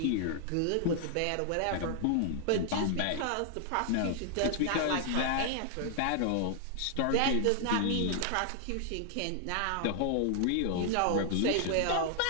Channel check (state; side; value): different; both; correlation 0.00